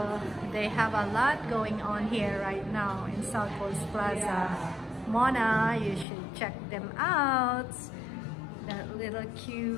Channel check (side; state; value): right; drops out; at 6.1 s